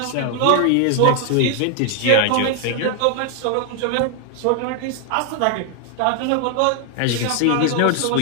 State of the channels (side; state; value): both; different; correlation 0.00